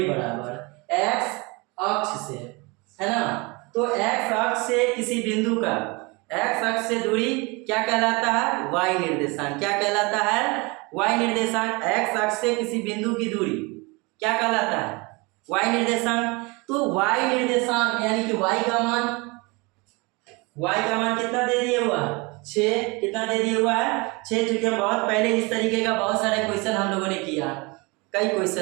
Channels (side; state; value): left; quieter; 26.8 dB